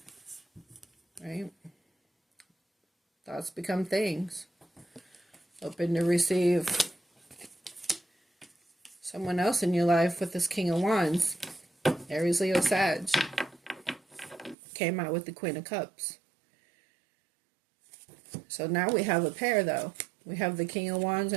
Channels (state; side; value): drops out; left; at 14.6 s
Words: Right? Thoughts become things. Open to receive someone else in your life with this King of Wands. Aries, Leo, Sag. Came out with the Queen of Cups. So now we have a pair, though. We have the King of Wands